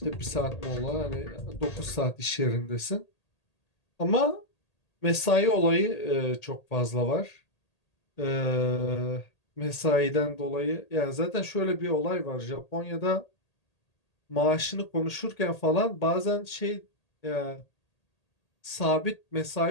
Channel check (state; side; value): late; right; 1.8 ms